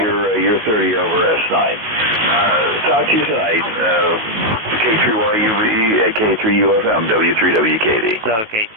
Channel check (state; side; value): late; left; 18 ms